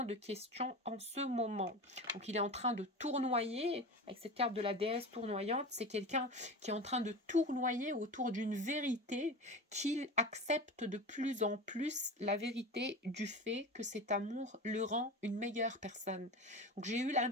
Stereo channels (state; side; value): normal; both; correlation 0.29